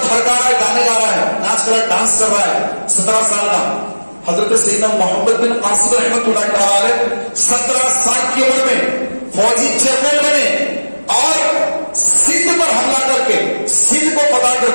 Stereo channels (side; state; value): both; inverted; correlation -1.00